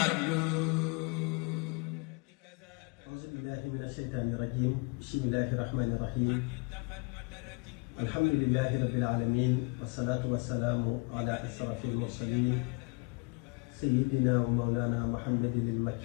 قبل. أعوذ بالله من الشيطان الرجيم. بسم الله الرحمن الرحيم. الحمد لله رب العالمين والصلاة والسلام على أشرف المرسلين سيدنا ومولانا محمد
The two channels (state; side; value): quieter; right; 30.2 dB